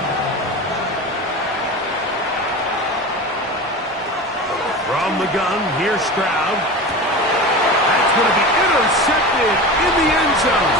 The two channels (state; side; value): normal; both; correlation 0.29